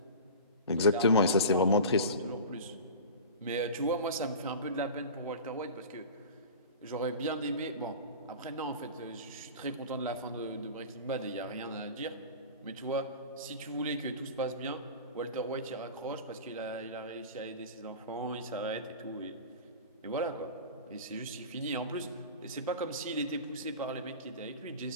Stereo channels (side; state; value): both; inverted; correlation -0.34